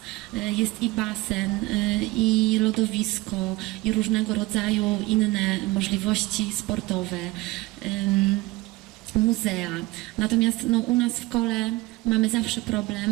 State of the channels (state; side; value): quieter; left; 20.3 dB